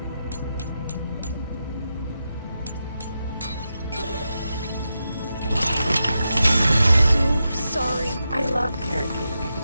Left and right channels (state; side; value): inverted; both; correlation -0.88